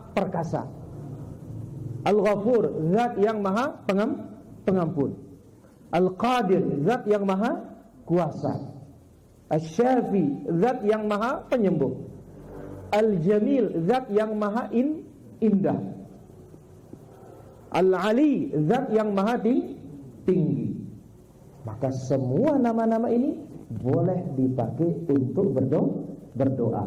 perkasa. Al-Ghafur, zat yang maha pengampun. Al-Qadir, zat yang maha kuasa. Asy-Syafi, zat yang maha penyembuh. Al-Jamil, zat yang maha indah. Al-Ali, zat yang maha tinggi. Maka semua nama-nama ini boleh dipakai untuk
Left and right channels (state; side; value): identical; both; correlation 1.00